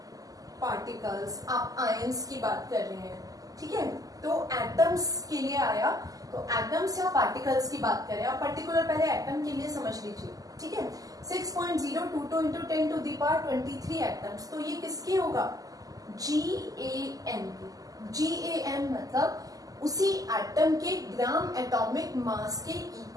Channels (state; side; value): late; left; 0.17 ms